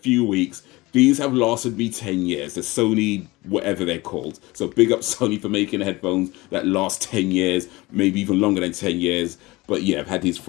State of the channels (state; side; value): quieter; right; 21.3 dB